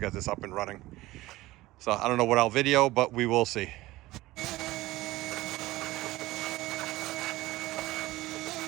get this up and running. So I don't know what I'll video, but we will see.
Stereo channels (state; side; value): quieter; left; 18.1 dB